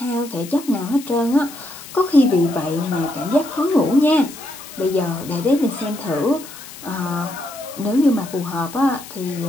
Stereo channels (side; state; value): left; noise; hiss, 15 dB below the sound